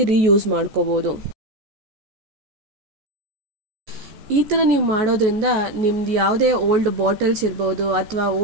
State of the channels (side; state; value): left; late; 14 ms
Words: ರೀಯೂಸ್ ಮಾಡ್ಕೋಬೋದು. ಈ ಥರ ನೀವು ಮಾಡೋದ್ರಿಂದ ನಿಮ್ದು ಯಾವುದೇ ಓಲ್ಡ್ ಬಾಟಲ್ಸ್ ಇರ್ಬೋದು ಅಥವಾ